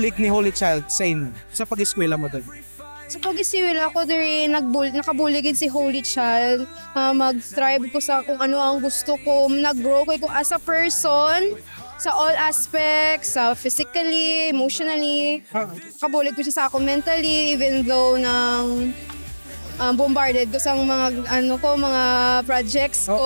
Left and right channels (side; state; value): both; inverted; correlation -1.00